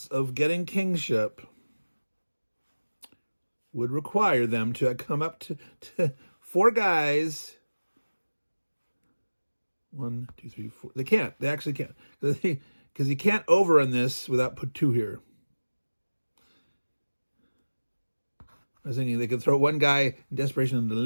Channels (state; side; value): inverted; both; correlation -1.00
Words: of getting kingship would require them to come up to four guys. 1, 2, 3, 4. They can't. They actually can't. Because you can't overrun this without put two here. I was thinking they could throw one guy in desperation into